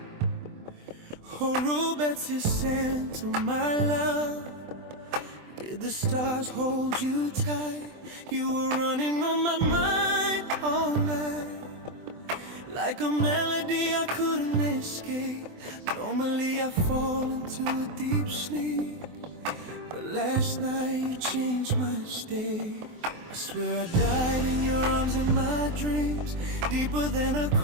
Oh, robetse, sentle, my love. Did the stars hold you tight? You were running on my mind all night, like a melody I couldn't escape. Normally I fall into a deep sleep, but last night you changed my state. I swear I died in your arms in my dreams, deeper than a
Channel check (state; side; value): late; left; 24 ms